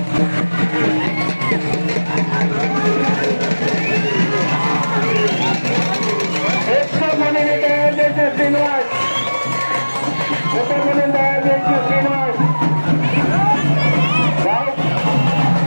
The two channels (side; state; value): both; inverted; correlation -1.00